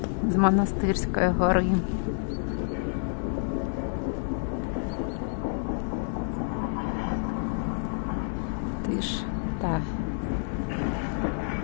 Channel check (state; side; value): silent; right; digital silence